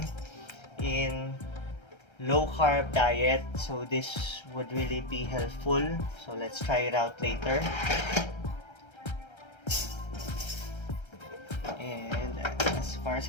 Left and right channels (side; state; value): right; late; 1.3 ms